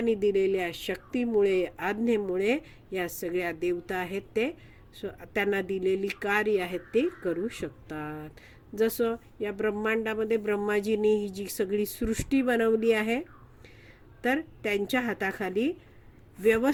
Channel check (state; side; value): identical; both; correlation 1.00